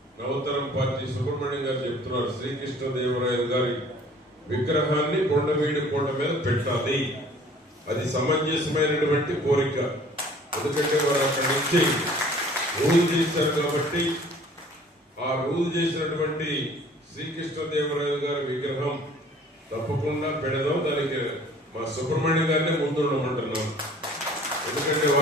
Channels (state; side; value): normal; both; correlation 0.52